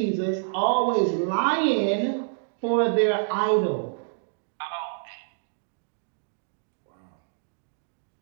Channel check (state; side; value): silent; left; digital silence